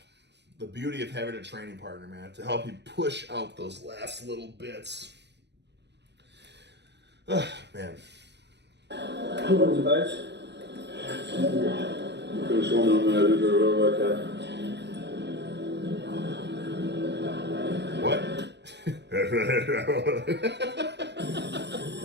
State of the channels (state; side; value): late; left; 0.50 ms